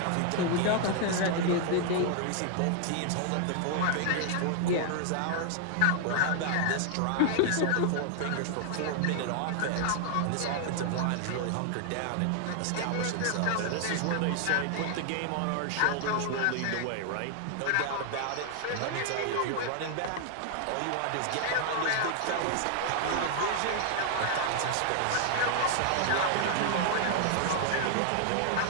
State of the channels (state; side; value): different; both; correlation -0.01